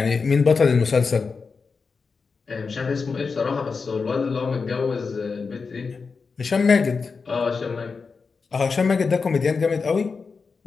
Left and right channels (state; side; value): quieter; right; 4.9 dB